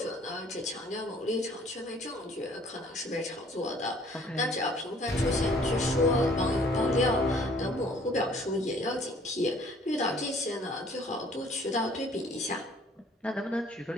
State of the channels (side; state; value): both; normal; correlation 0.57